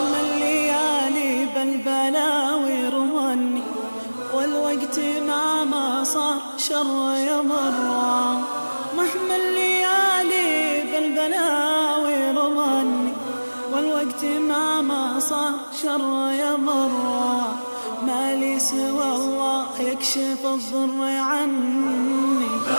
الليالي بالبلاوي رمني، والوقت ما صار شر يمرى. مهما الليالي بالبلاوي رمني، والوقت ما صار شر يمرى. ما لي سوى الله يكشف الضر عني،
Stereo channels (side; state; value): both; inverted; correlation -1.00